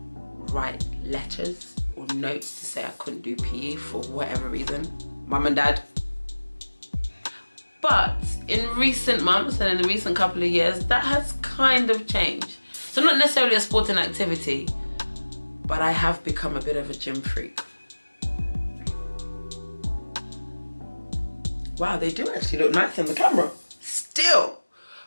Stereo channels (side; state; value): both; inverted; correlation -1.00